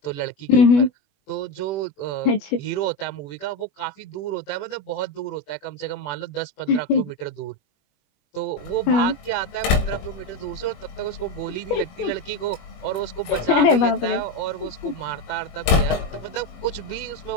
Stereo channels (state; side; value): late; right; 21 ms